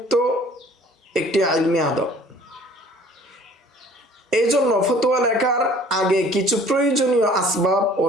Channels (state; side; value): normal; both; correlation 0.52